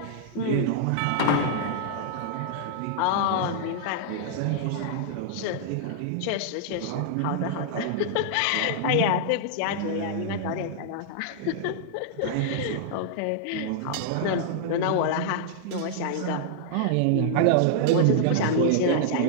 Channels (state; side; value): different; both; correlation -0.01